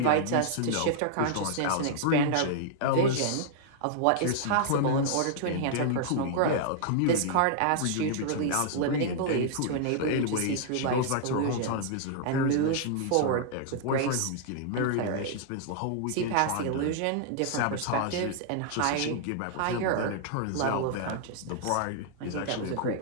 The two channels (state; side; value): different; both; correlation -0.01